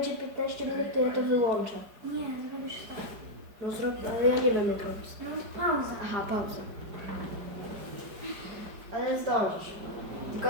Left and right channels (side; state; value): left; late; 4.9 ms